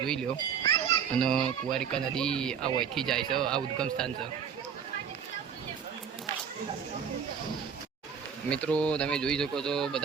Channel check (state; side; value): quieter; left; 7.3 dB